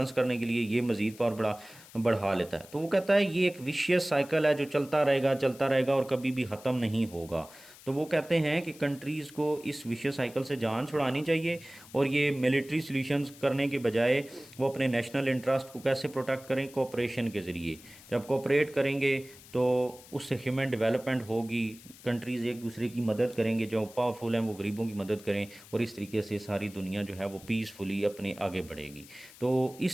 करने के लिए, ये मज़ीद पावर बढ़ा लेता है। तो वो कहता है ये एक विशियस साइकिल है जो चलता रहेगा और कभी भी ख़त्म नहीं होगा। तो वो कहते हैं कि कंट्रीज़ को इस विशियस साइकिल से जान छुड़ानी चाहिए और ये मिलिट्री सॉल्यूशंस करने के बजाय वो अपने नेशनल इंटरेस्ट को कैसे प्रोटेक्ट करें, कोऑपरेशन के ज़रिए। जब कोऑपरेट करेंगे तो उससे ह्यूमन डेवलपमेंट होगी, कंट्रीज़ एक दूसरे की मदद करेंगे, जो पावरफुल हैं वो गरीबों की मदद करें, और इस तरीके से सारी दुनिया जो है वो पीसफुली अपने आगे बढ़ेगी। तो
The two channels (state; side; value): noise; left; hiss, 21 dB below the sound